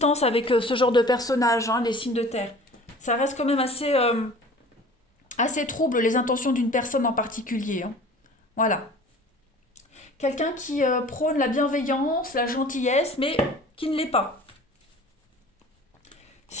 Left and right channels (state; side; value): normal; both; correlation 0.45